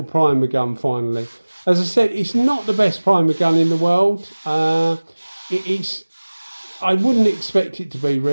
primer gun finally. As I said, it's not the best primer gun in the world. It's I wouldn't expect it to be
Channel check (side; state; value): both; inverted; correlation -1.00